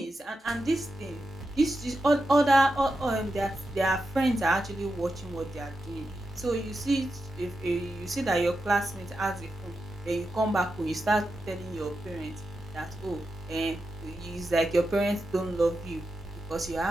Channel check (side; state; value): both; normal; correlation 0.88